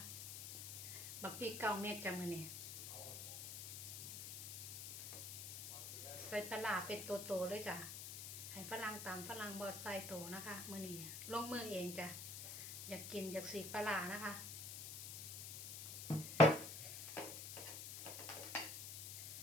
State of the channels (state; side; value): noise; left; hiss, 7 dB below the sound